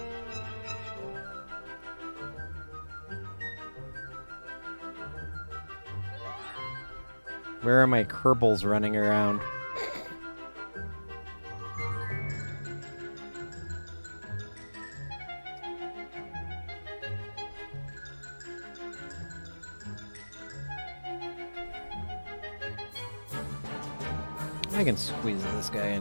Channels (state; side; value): inverted; both; correlation -1.00